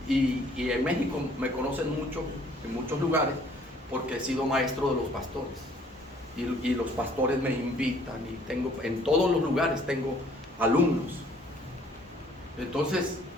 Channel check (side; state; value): both; normal; correlation 0.59